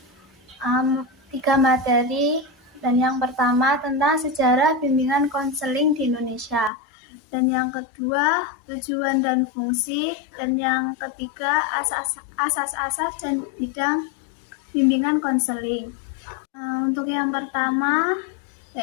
3 materi. Dan yang pertama tentang sejarah bimbingan konseling di Indonesia. Dan yang kedua tujuan dan fungsi. Dan yang ketiga asas-asas dan bidang bimbingan konseling. Untuk yang pertama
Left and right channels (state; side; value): drops out; right; at 6.7 s